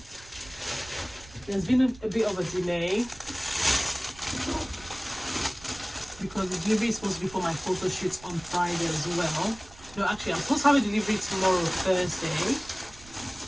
there's been a bit of a delay because the delivery is supposed to be for my photo shoots on Friday as well. No, actually, I'm supposed to have a delivery tomorrow, Thursday.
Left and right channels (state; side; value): noise; right; rumble, 21 dB below the sound